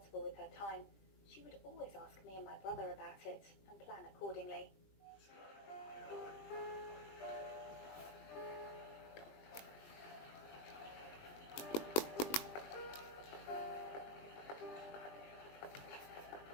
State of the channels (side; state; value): right; late; 20 ms